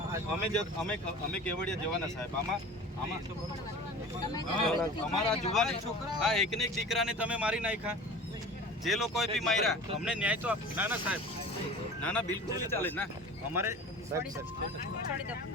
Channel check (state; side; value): normal; both; correlation 0.38